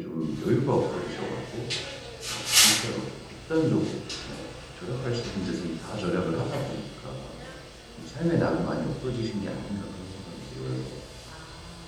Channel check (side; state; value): both; identical; correlation 1.00